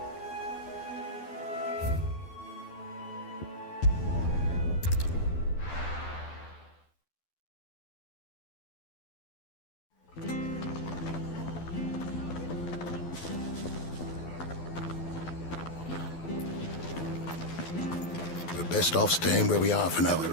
We're best off staying where we are for now, I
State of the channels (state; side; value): late; right; 12 ms